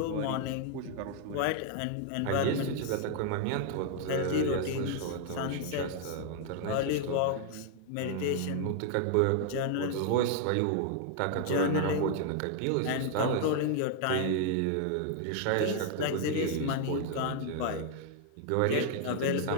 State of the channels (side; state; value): both; different; correlation 0.00